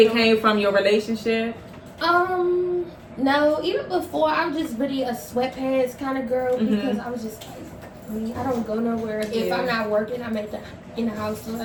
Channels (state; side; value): identical; both; correlation 1.00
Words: came from your relationship? No. Even before, I was just really a sweatpants kind of girl because I was just like, I don't go nowhere. If I'm not working, I'm in the house, so